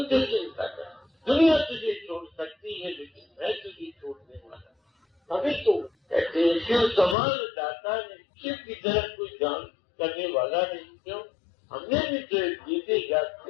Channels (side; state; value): right; drops out; at 7.2 s